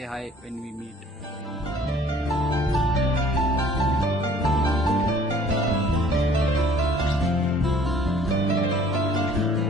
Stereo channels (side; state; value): both; normal; correlation 0.55